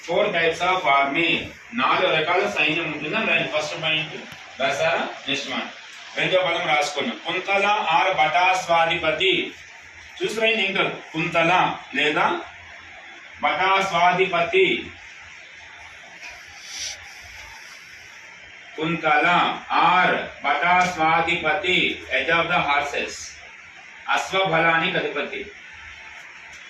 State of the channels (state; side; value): identical; both; correlation 1.00